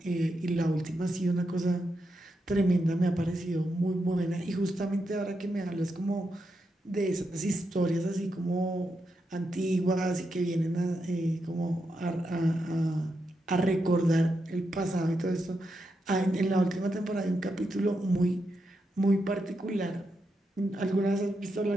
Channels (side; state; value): both; normal; correlation 0.85